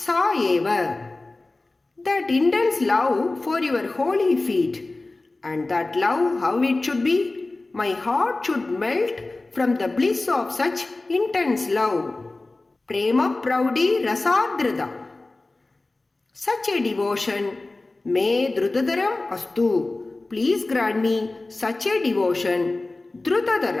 Eva. That intense love for your holy feet, and that love how it should be, my heart should melt from the bliss of such intense love. Prema Praudi Rasadhrada. Such a devotion may Drutadaram Astu. Please grant me such a devotion.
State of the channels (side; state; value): right; quieter; 3.1 dB